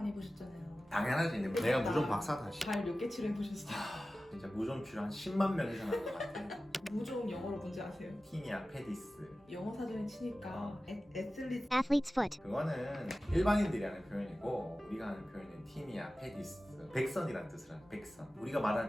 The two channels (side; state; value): both; normal; correlation 0.95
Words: 해보셨잖아요. 당연하지. 내가 무좀 박사다. 발 몇 개 치료해보셨어요? 진짜 무좀 치료 한 10만 명 이상 한 것 같아. 무좀 영어로 뭔지 아세요? 티니아 페디스. 영어 사전에 치니까 애슬리트 athlete's foot, 그거는 일반인들이 하는 표현이고 우리가 하는 표현은 티니아 페디스. 백선이라는 뜻을 하는 백선. 우리가 말하는